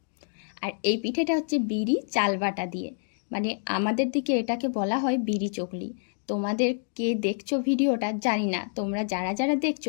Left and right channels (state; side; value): silent; right; digital silence